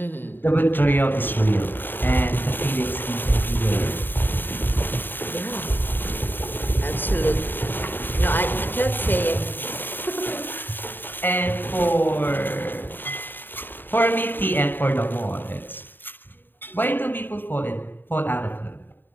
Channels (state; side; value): late; right; 0.094 ms